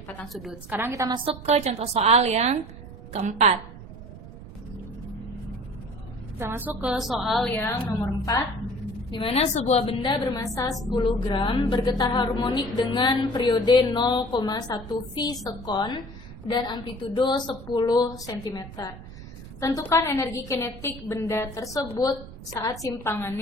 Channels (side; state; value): right; noise; rumble, 15 dB below the sound